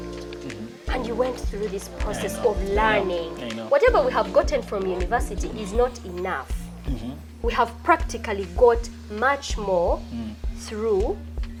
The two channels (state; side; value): identical; both; correlation 1.00